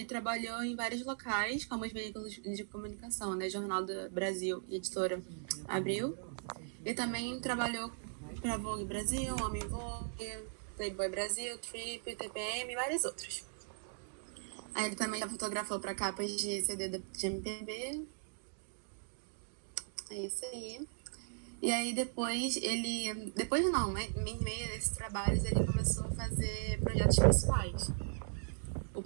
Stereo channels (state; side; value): silent; left; digital silence